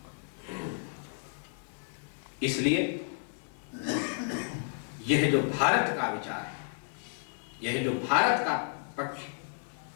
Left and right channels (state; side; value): silent; right; 56 dB below the other